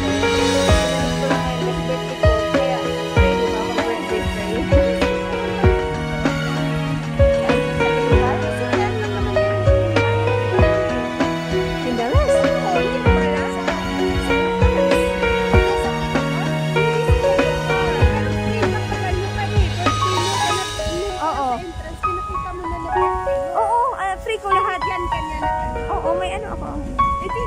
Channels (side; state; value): both; identical; correlation 1.00